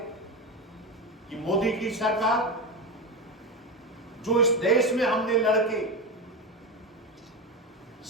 कि मोदी की सरकार जो इस देश में हमने लड़के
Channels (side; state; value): both; normal; correlation 0.17